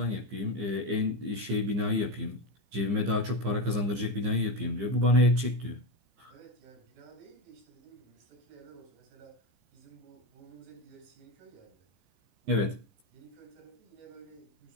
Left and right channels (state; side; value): late; left; 15 ms